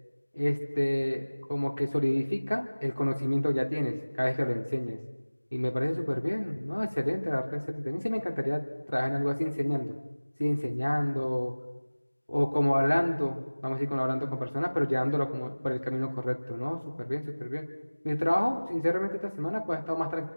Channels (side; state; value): both; inverted; correlation -1.00